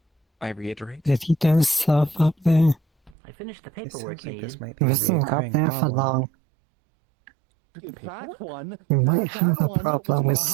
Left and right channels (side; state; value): left; drops out; at 3.2 s